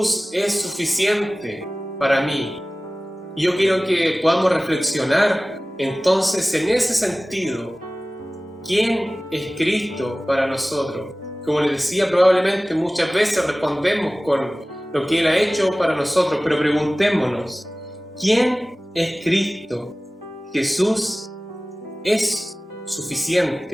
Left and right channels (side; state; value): both; normal; correlation 0.97